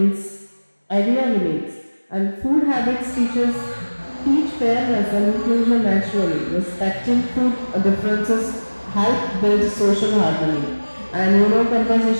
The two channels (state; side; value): inverted; both; correlation -1.00